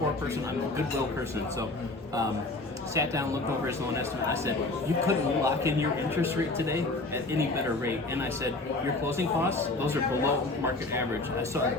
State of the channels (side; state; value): right; quieter; 3.0 dB